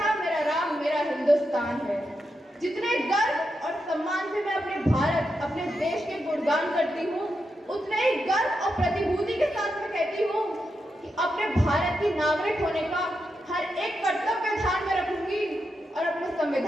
मेरा राम, मेरा हिंदुस्तान है। जितने गर्व और सम्मान से मैं अपने भारत, अपने देश के गुणगान करती हूँ, उतने ही गर्व और प्रतिभूति के साथ मैं कहती हूँ कि अपने भारत की नागरिक होने का हर एक कर्तव्य ध्यान में रखूंगी और अपने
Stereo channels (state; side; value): normal; both; correlation 0.86